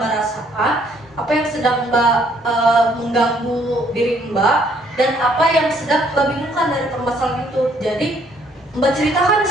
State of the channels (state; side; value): normal; both; correlation 0.65